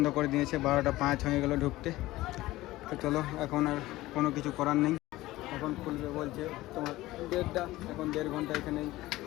করে দিয়েছে। 12টা 5 হয়ে গেল ঢুকতে। তো চলো এখন আর কোনো কিছু করার নেই, এখন খুলবে বলছে তোমার 1:30টা, এখন 1.5 ঘন্টা এখানেই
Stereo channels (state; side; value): quieter; right; 17.6 dB